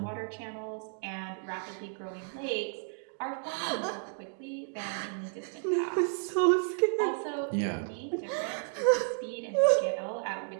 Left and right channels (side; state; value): left; silent; 56 dB below the other